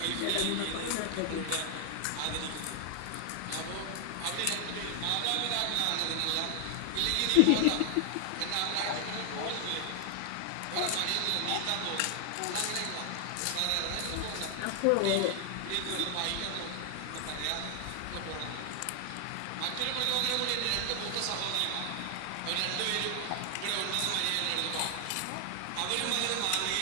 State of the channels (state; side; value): different; both; correlation 0.00